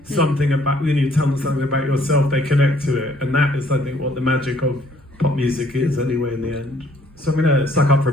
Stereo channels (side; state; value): both; normal; correlation 0.63